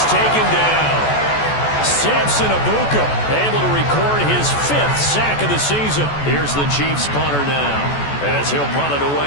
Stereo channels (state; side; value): late; right; 14 ms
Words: taken down. Samson Abuka able to record his 5th sack of the season. Here's the Chiefs punter now as he'll punt it